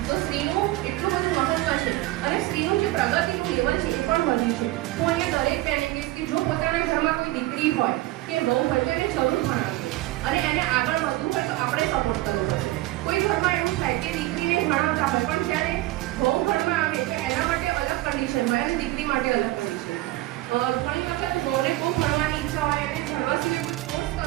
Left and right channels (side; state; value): left; quieter; 17.6 dB